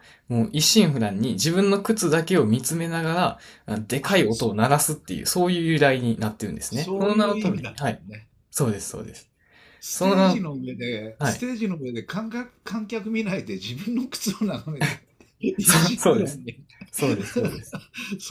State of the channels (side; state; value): both; identical; correlation 1.00